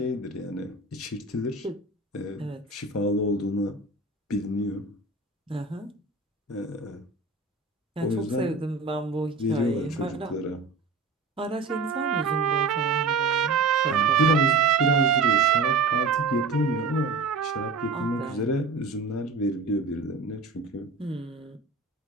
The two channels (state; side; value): quieter; left; 3.8 dB